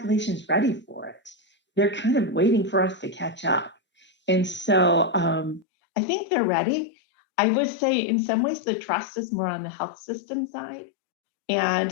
is ready for it. They're kind of waiting for us to catch up. And so I think they're ready. I would say in some ways the trust is more on the health system side. And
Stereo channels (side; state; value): right; drops out; at 5.7 s